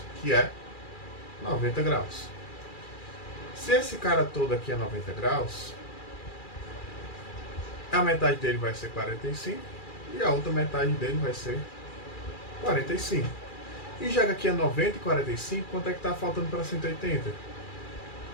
que é 90 graus. Se esse cara todo aqui é 90 graus, a metade dele vai ser 45 e a outra metade dele vai ser 45. E já que aqui é 90 e 45, quanto é que está faltando para 180?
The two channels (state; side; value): late; right; 2.4 ms